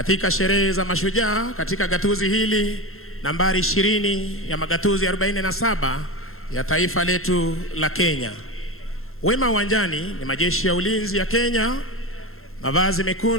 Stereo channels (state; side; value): late; right; 0.62 ms